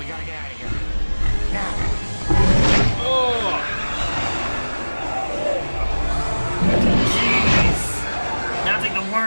gotta get out of here. Now. Jeez. Now it's like the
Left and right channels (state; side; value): inverted; both; correlation -1.00